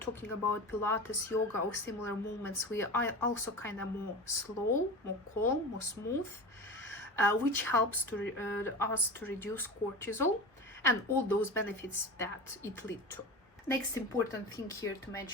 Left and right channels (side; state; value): both; normal; correlation 0.29